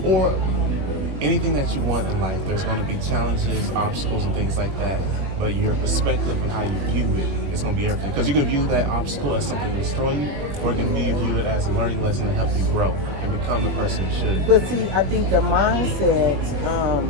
that you want in life. There's going to be challenges, obstacles, and things like that. But your perspective and how you view it is going to be everything. Because you can view that obstacle as something to destroy you, or you can view it as a learning lesson to help you grow and become the person you should. But see, I think the mindset,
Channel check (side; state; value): left; late; 21 ms